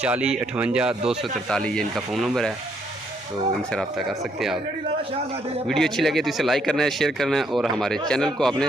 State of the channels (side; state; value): both; normal; correlation 0.71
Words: 58 243 ये इनका फ़ोन नंबर है। तो इनसे रब्ता कर सकते हैं आप। वीडियो अच्छी लगे तो इसे लाइक करना है, शेयर करना है और हमारे चैनल को